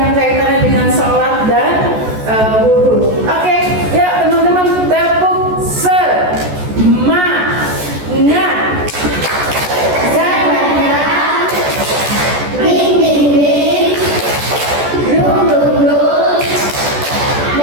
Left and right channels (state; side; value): late; left; 14 ms